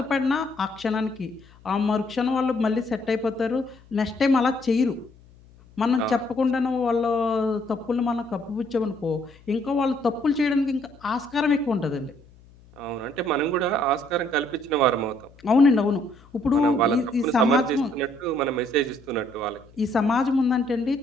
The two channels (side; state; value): left; noise; hum, 26 dB below the sound